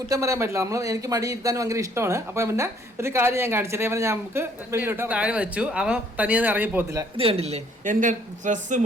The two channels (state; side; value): normal; both; correlation 0.63